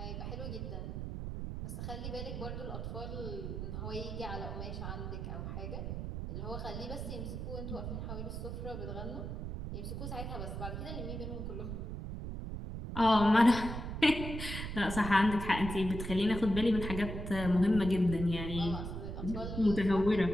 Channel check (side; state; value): right; noise; rumble, 5 dB below the sound